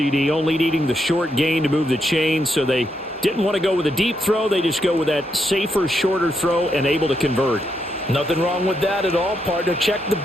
only needing the short gain to move the chain, so they didn't want to go with a deep throw. They just go with that safer, shorter throw and able to convert. Nothing wrong with that at all, partner. Check the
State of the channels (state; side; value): normal; both; correlation 0.80